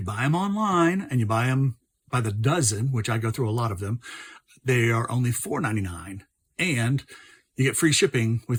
buy them online and you buy them by the dozen, which I go through a lot of them, they are only $4.99, and you get free shipping with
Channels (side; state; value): both; identical; correlation 1.00